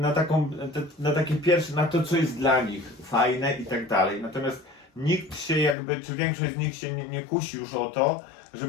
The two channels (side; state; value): right; drops out; at 5.8 s